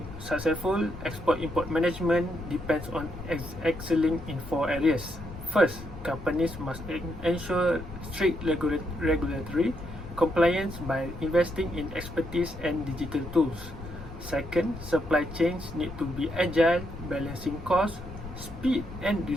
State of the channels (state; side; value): noise; left; rumble, 13 dB below the sound